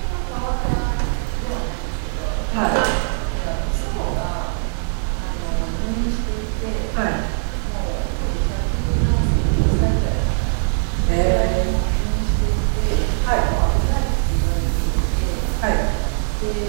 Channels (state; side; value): silent; left; digital silence